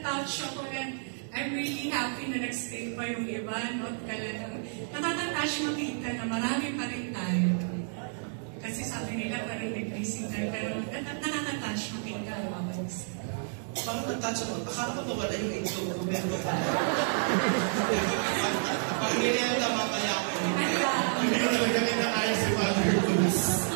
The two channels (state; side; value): silent; left; digital silence